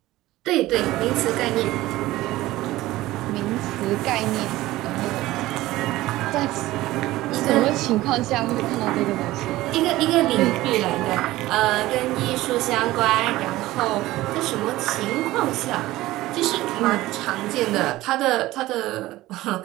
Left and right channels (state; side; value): quieter; left; 17.2 dB